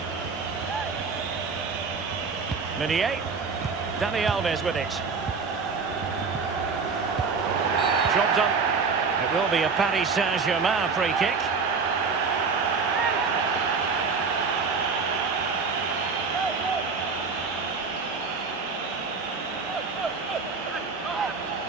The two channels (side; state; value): left; quieter; 4.9 dB